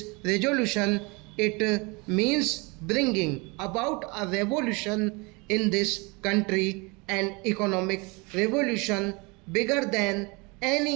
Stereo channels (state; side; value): quieter; left; 27.9 dB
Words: resolution, it means bringing about a revolution in this country, an economic revolution bigger than